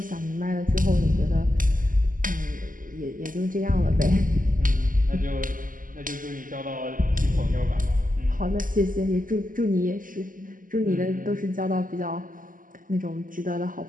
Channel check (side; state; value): left; late; 0.39 ms